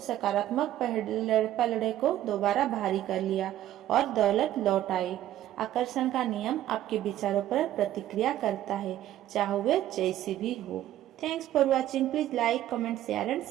सकारात्मक पलड़े को दोबारा भारी कर लिया और दौलत लौट आई। आकर्षण का नियम आपके विचारों पर प्रतिक्रिया करता है, चाहे वे जैसी भी हो। Thanks for watching. Please like, comment, share and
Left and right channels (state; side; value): quieter; left; 12.9 dB